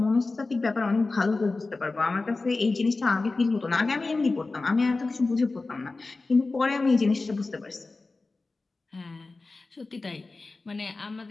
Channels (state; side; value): quieter; right; 3.5 dB